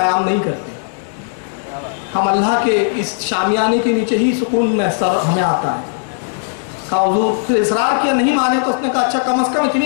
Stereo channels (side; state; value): right; silent; digital silence